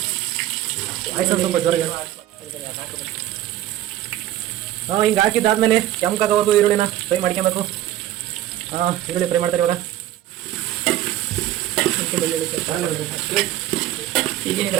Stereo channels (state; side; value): quieter; left; 13.3 dB